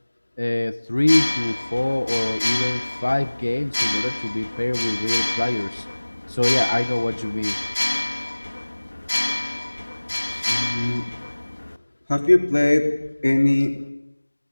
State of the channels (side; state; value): both; inverted; correlation -1.00